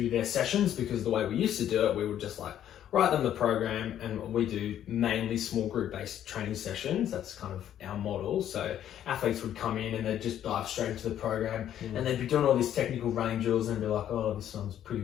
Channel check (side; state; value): right; quieter; 10.8 dB